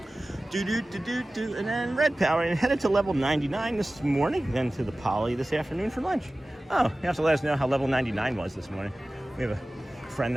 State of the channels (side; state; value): both; normal; correlation 0.97